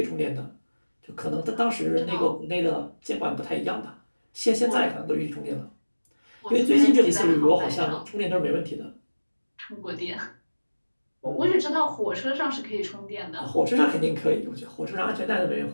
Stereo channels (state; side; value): inverted; both; correlation -1.00